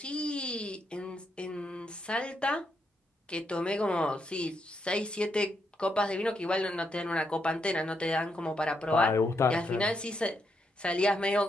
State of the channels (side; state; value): both; normal; correlation 0.79